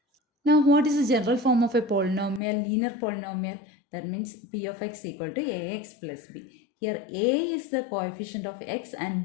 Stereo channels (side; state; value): right; drops out; at 2.4 s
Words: Now what is the general form of a polynomial, linear polynomial? That means p of x equal to ax plus b. Here a is the coefficient of x